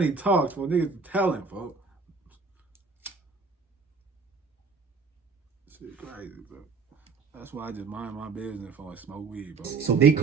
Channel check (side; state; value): left; quieter; 4.8 dB